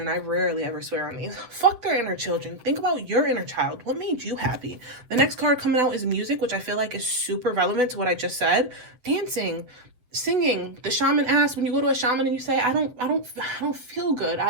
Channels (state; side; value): late; left; 8.2 ms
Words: I rarely ever swear on these. Fuck their inner children. Think about your inner child. What made you happy? The next card coming out is music, which I feel like is super relevant to what I just said. Dancing, singing. The shaman asks, when you go to a shaman and you say, I don't feel good.